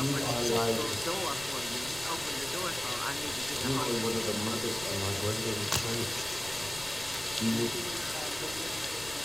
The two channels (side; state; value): left; noise; rumble, 17 dB below the sound